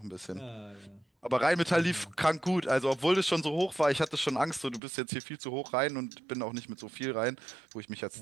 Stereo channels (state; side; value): drops out; left; at 4.8 s